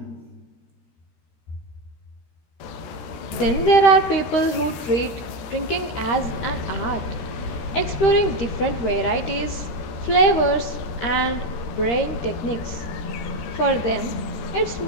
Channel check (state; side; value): late; right; 13 ms